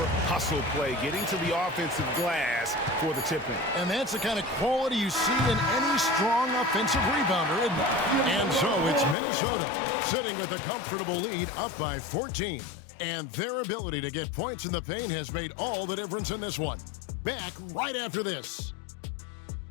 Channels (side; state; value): right; drops out; at 9.2 s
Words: hustle play, getting to the offensive glass for the tip-in. And that's the kind of quality you see in any strong offensive rebounder, isn't it? And so it's Minnesota sitting with a comfortable lead up by 14. And their ability to get points in the paint has made all the difference in this one. Back right after this.